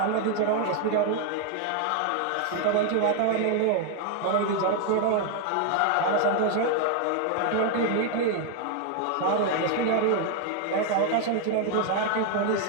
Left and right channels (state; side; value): different; both; correlation 0.00